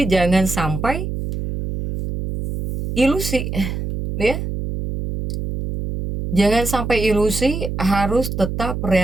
jangan sampai ilusi. Ya, jangan sampai ilusi, harus tetap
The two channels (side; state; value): right; noise; hum, 4 dB below the sound